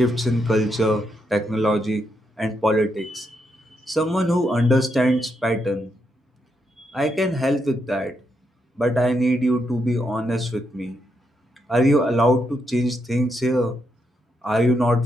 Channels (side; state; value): both; normal; correlation 0.80